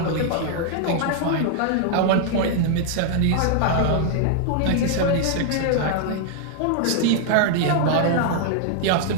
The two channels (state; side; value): different; both; correlation 0.00